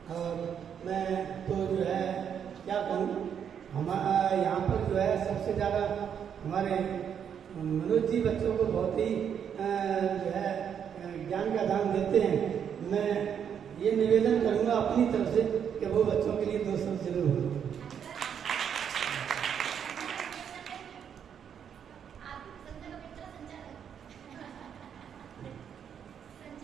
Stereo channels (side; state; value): left; quieter; 8.1 dB